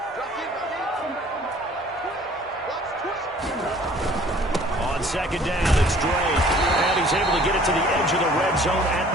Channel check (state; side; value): normal; both; correlation 0.53